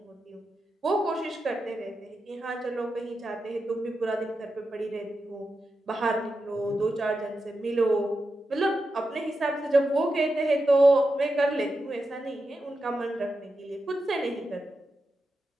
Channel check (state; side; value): normal; both; correlation 0.88